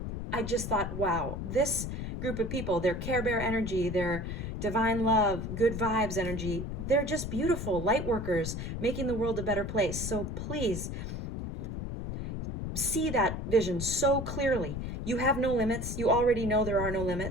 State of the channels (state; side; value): noise; left; rumble, 5 dB below the sound